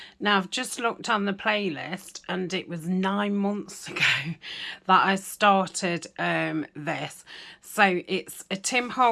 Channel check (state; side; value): identical; both; correlation 1.00